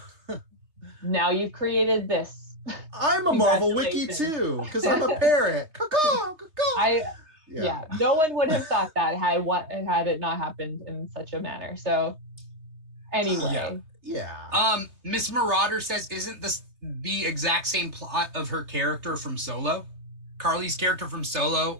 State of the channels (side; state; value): left; late; 3.2 ms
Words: now you've created this. I'm a Marvel wiki too, because I'm a parrot. No one would have thought that had it not happened in such a manner. So anyway. Miss Marauder says, isn't this the exact same plot of her character from Solo? Carly's character from